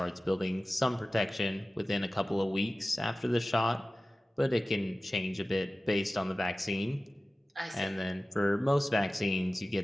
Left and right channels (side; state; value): both; normal; correlation 0.96